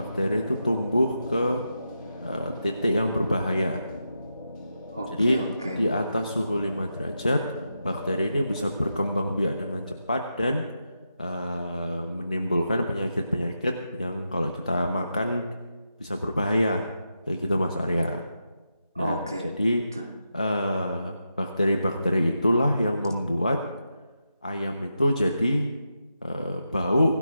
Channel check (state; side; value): inverted; both; correlation -0.86